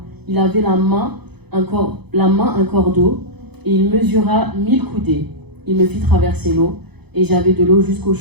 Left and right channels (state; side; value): late; left; 0.98 ms